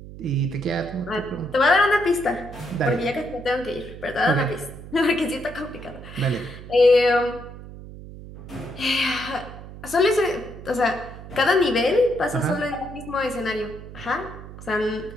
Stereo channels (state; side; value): noise; right; hum, 14 dB below the sound